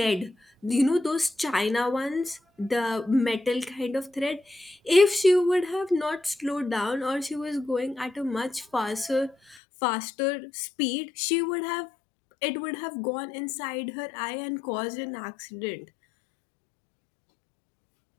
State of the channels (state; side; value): drops out; right; at 9.6 s